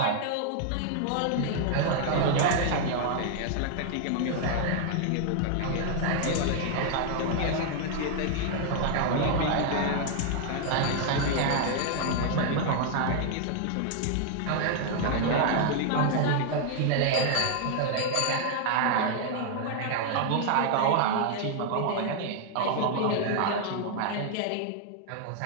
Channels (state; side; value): different; both; correlation 0.00